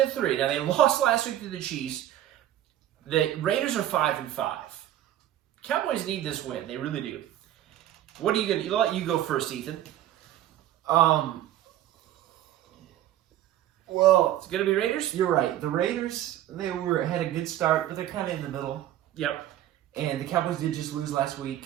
Now, they lost last week to the Chiefs. The Raiders are 5-5. Cowboys need this win. They really do. What are you going to... I'll let you go first, Ethan. Well, It's going to be Raiders? you're right. The Raiders, had a good start, but they're kind of in the middle. Yep. And the Cowboys did just lose last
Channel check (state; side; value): quieter; left; 12.6 dB